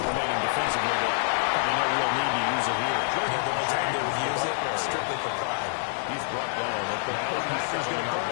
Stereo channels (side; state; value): right; silent; digital silence